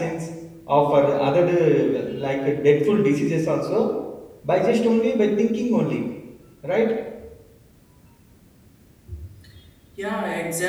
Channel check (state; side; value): identical; both; correlation 1.00